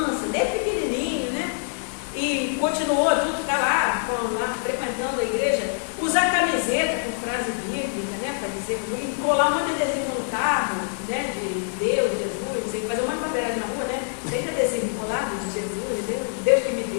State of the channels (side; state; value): right; silent; 61 dB below the other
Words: desde pequenininho, né? E continuou, tudo está lá, frequentando a igreja, usar camiseta com frase bíblica, né? Para dizer, colar um monte de adesivo no carro, né? De Deus, Jesus, fazer uma bandeiragem na rua, né? Tem adesivo colado de Jesus, Deus que me